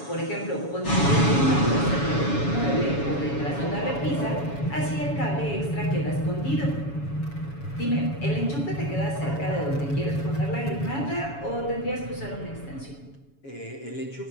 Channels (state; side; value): late; right; 7.1 ms